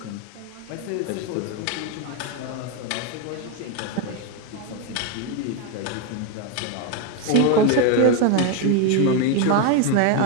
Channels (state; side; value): different; both; correlation 0.02